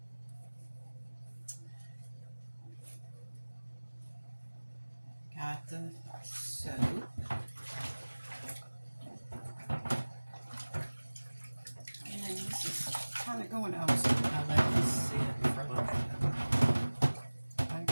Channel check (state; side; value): inverted; both; correlation -1.00